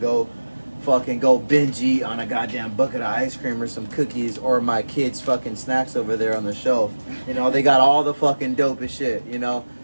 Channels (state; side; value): inverted; both; correlation -1.00